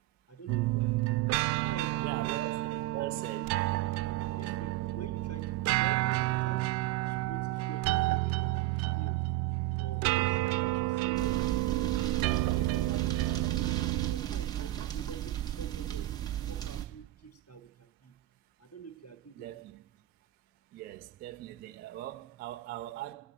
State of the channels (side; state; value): left; quieter; 16.4 dB